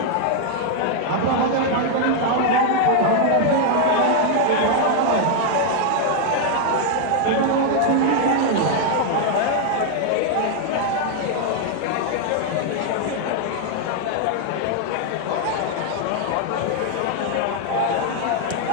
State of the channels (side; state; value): both; different; correlation 0.00